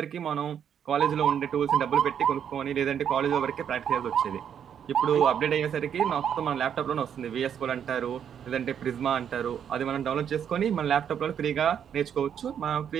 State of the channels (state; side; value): quieter; left; 8.5 dB